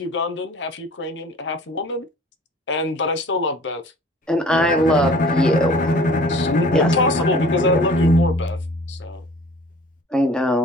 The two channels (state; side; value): normal; both; correlation 0.48